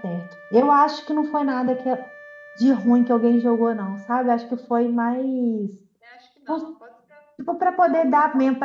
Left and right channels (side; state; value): both; identical; correlation 1.00